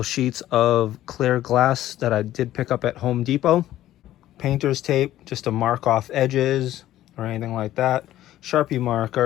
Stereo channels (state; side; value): quieter; right; 13.7 dB